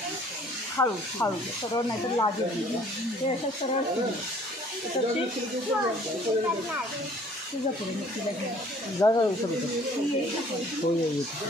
हळू हळू सरळ नाही तर लागेल ते असं सरळ तुझा करून तिला जागा हो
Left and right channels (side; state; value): both; normal; correlation 0.55